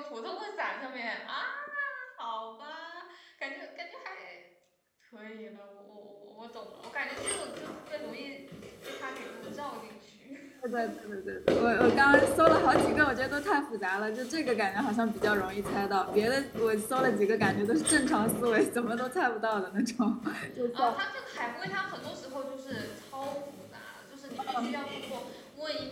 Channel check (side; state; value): both; identical; correlation 1.00